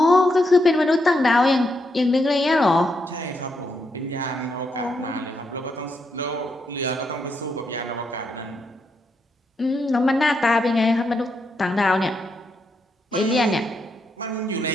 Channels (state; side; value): normal; both; correlation 0.81